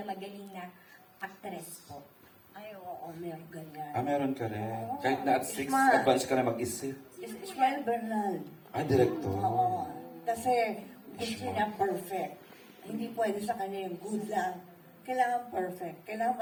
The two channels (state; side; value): identical; both; correlation 1.00